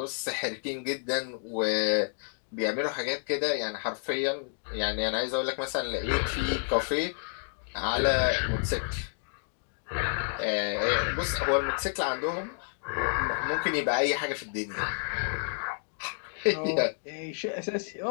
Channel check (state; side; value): silent; right; 58 dB below the other